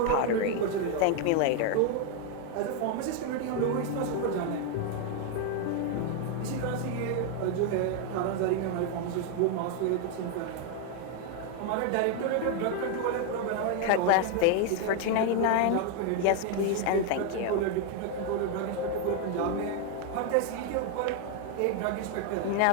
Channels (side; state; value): both; different; correlation 0.01